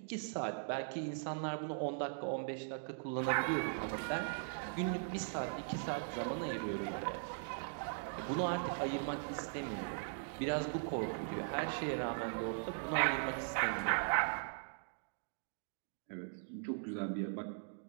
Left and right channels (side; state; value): left; silent; digital silence